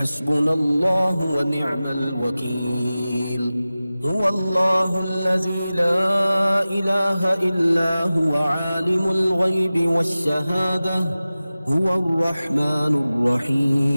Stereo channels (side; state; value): both; inverted; correlation -0.96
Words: الله ونعم الوكيل هو الله الذي لا إله إلا هو عالم الغيب والشهادة هو الرحمن